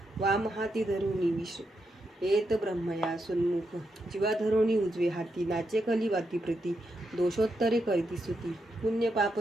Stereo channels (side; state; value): both; normal; correlation 0.83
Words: वाम हाती धरुनी विष येत ब्रह्मया सुन्मुख जीवा धरोणी उजवे हाती नाचे कली वाती प्रती दोषोत्तरे करीती स्तुती पुण्य पाप